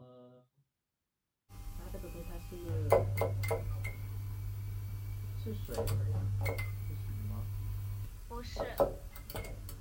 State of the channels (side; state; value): both; identical; correlation 1.00